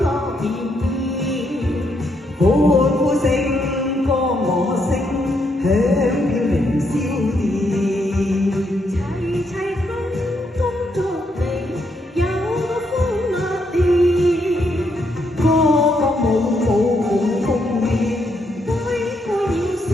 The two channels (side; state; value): both; normal; correlation 0.76